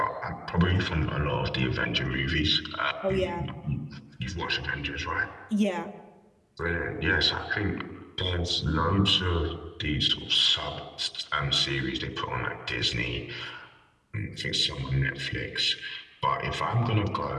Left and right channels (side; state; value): both; identical; correlation 1.00